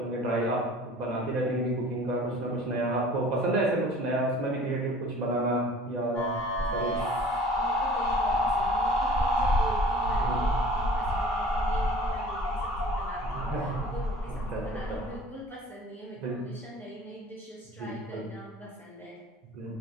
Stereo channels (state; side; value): normal; both; correlation 0.46